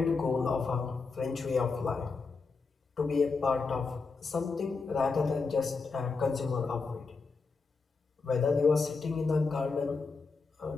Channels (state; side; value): quieter; right; 4.4 dB